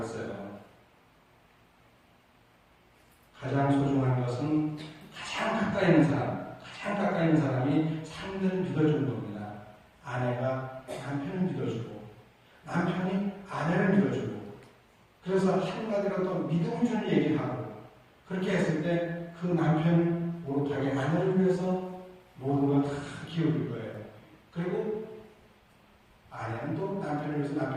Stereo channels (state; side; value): identical; both; correlation 1.00